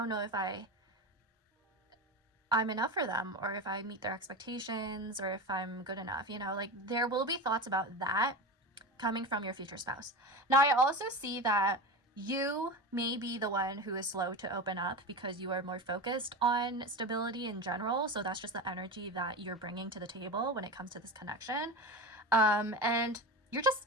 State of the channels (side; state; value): both; normal; correlation 0.24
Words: know if I'm enough for them, or if I meet their expectations, or if I'm good enough, you know, like there will be thoughts about that coming from your future spouse. Now, I also see that you may be the one who is slow to open up because you are more focused on stability in general. So that's just the energy that you're bringing to the table when it comes to this connection. And you're